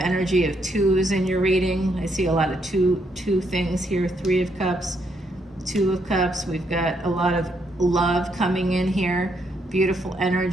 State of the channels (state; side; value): normal; both; correlation 0.75